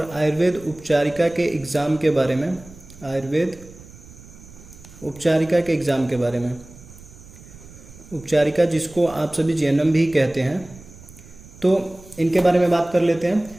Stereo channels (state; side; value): noise; right; rumble, 20 dB below the sound